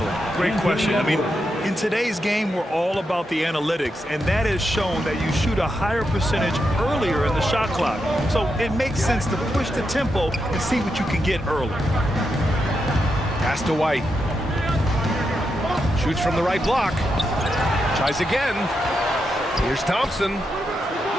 Great question. I mean, in today's game, we're all about the analytics, and that has shown that you shoot a higher percentage earlier in the shot clock. So it makes sense to push the tempo and see what you can get early. Pass to White. Shoots from the right block. Tries again. Here's Thompson.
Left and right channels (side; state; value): both; normal; correlation 0.84